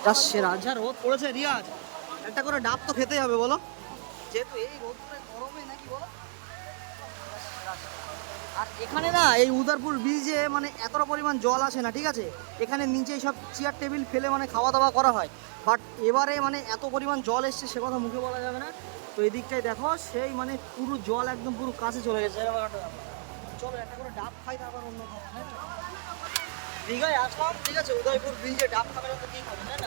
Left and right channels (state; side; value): silent; left; 57 dB below the other